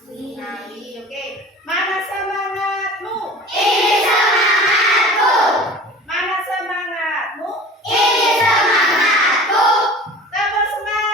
Oke, mana semangatmu? Ini semangatku. Mana semangatmu? Ini semangatku. Tepuk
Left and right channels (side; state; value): both; normal; correlation 0.40